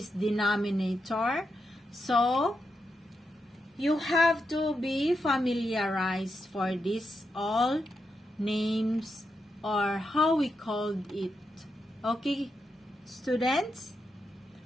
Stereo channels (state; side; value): normal; both; correlation 0.85